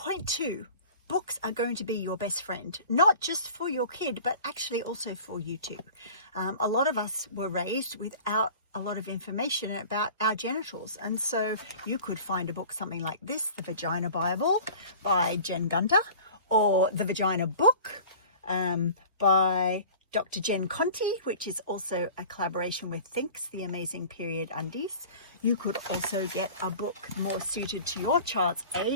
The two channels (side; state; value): both; inverted; correlation -0.42